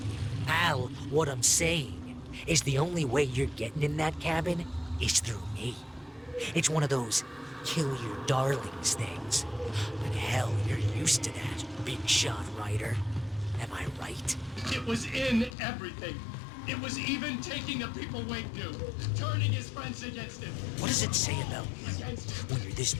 Al, what I'm saying is the only way you're getting in that cabin is through me. It's one of those kill your darlings things. But hell, you're used to that, big shot writer. Am I right? It was in everything. It was even taking the people Wink knew, turning his friends against him. What does it say about you when you're this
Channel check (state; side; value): drops out; right; at 15.6 s